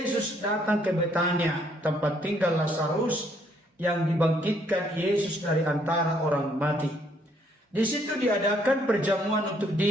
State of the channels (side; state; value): both; normal; correlation 0.68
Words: datang ke Betania, tempat tinggal Lazarus yang dibangkitkan Yesus dari antara orang mati. Di situ diadakan perjamuan untuk